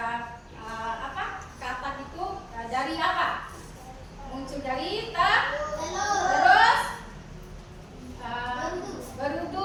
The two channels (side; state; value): both; identical; correlation 1.00